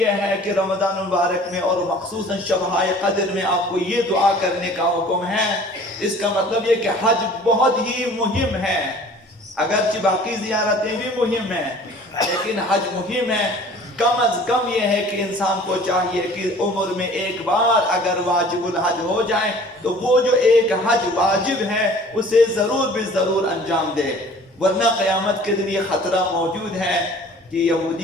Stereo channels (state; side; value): normal; both; correlation 0.48